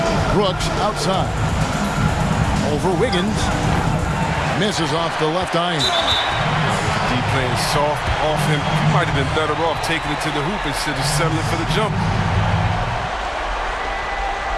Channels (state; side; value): identical; both; correlation 1.00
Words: Brooks outside. Over Wiggins. Misses off the left eye. D playing soft off him. He might have been better off taking it to the hoop instead of settling for the jump.